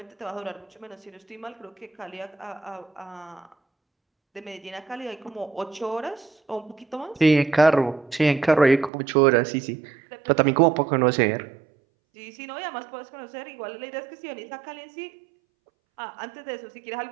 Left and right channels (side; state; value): left; drops out; at 8.9 s